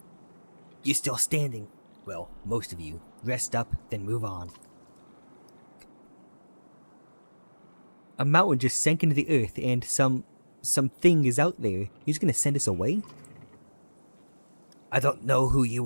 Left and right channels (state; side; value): inverted; both; correlation -1.00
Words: You're still standing. Well, most of you. Rest up, then move on. A mountain just sank into the earth and something is out there. He's gonna send us away? I don't know who